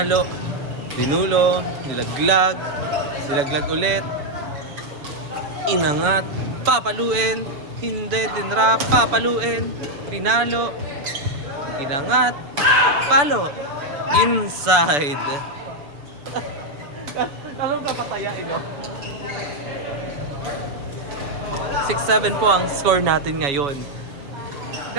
Dinulo. Nilaglag. Nilaglag ulit. Inangat. Papaluin. Hindi. Dinrap. Papaluin. Pinalo. Inangat. Palo. Inside. Anong kapatayain nyo? 6-7 po ang score natin ngayon.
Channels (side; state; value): left; late; 6.9 ms